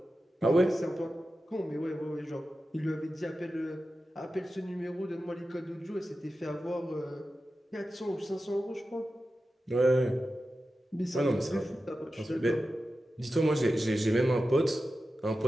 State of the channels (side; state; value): both; normal; correlation 0.93